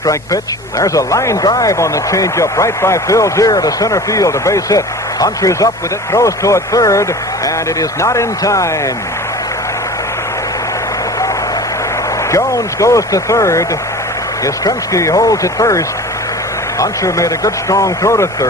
pitch. There's a line drive on the changeup right by Phil Zier to center field, a base hit. Hunter's up with it, throws toward third, and it is not in time. Jones goes to third. Yastrzemski holds at first. Hunter made a good strong throw to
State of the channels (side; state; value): both; normal; correlation 0.38